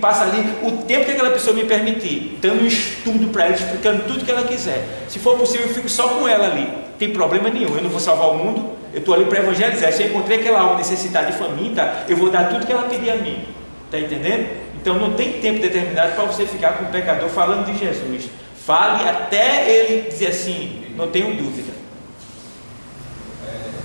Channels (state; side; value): inverted; both; correlation -1.00